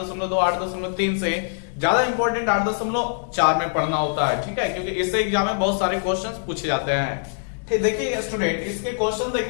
8.3 से ज्यादा इंपॉर्टेंट 8.4 में पढ़ना होता है, ठीक है, क्योंकि इससे एग्जाम में बहुत सारे क्वेश्चन पूछे जाते हैं। ठीक, देखिए स्टूडेंट, इसके क्वेश्चन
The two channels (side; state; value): right; silent; 63 dB below the other